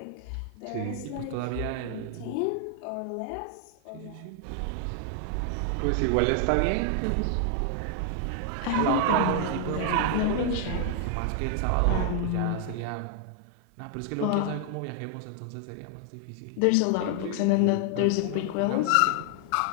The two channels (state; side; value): different; both; correlation 0.00